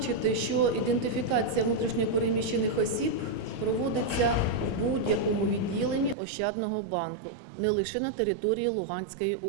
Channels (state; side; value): drops out; left; at 6.2 s